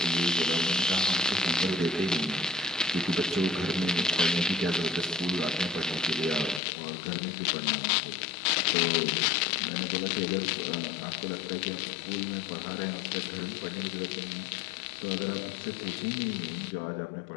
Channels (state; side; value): drops out; right; at 6.6 s